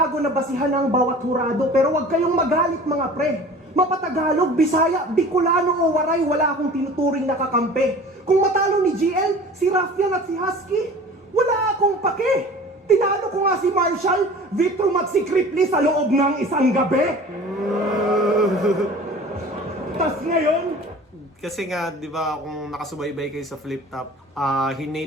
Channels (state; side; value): normal; both; correlation 0.43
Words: na basihan ng bawat hurado. Pero wag kayong magalit mga pre. Mapatagalog, Bisaya, Bicolano o Waray, wala akong tinuturing na kakampi. Kung matalo ni GL, si Raffian at si Husky, wala akong pake. Tinalo ko nga si Marshall, Vitrum at si Cripley sa loob ng isang gabi. Tas ngayon, kasi nga, di ba, kung nakasubaybay kayo sa Flip Top,